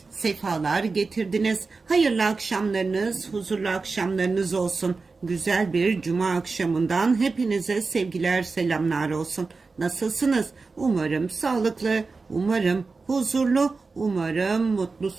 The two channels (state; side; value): quieter; left; 4.2 dB